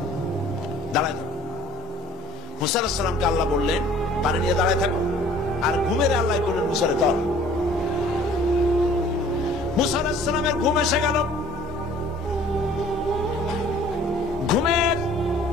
দাঁড়ায় থাকো। মুসা আলাইহিস সালামকে আল্লাহ বললেন পানি নিয়ে দাঁড়ায় থাকো, আর ঘুমের আল্লাহ করলেন মুসারে ধর। মুসা আলাইহিস সালামের ঘুম এসে গেল, ঘুমের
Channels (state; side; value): normal; both; correlation 0.52